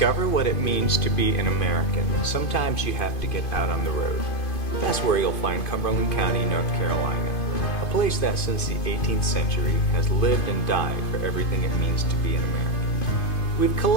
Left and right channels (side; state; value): right; late; 2.5 ms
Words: what it means to be an American, sometimes you have to get out on the road. That's where you'll find Cumberland County, North Carolina, a place that since the 18th century has lived and died for everything it means to be an American. We've